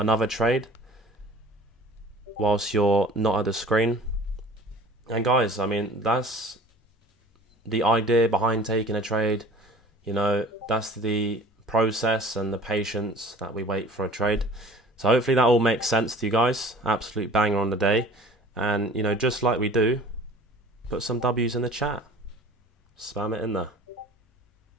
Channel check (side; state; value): both; normal; correlation 0.46